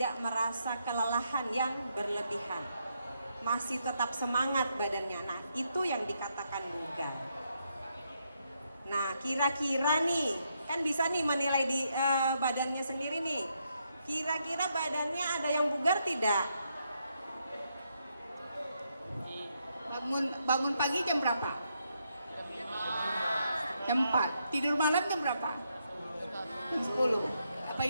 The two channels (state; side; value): inverted; both; correlation -0.79